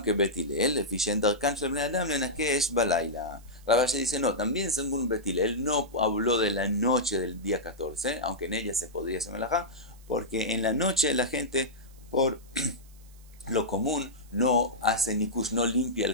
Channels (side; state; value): right; noise; hiss, 27 dB below the sound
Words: que Bet Hillel, Lefishen Darkan Shel Bnei Adam Lenakesh Balayla. Ravashi dice, no, también según Bet Hillel no habló de la noche del día 14, aunque en ella se podría hacer melajá, porque en la noche la gente, por lo común, no hace nikush, no limpia